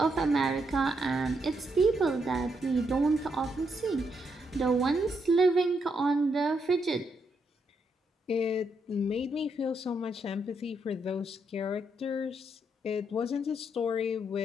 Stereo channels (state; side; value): normal; both; correlation 0.78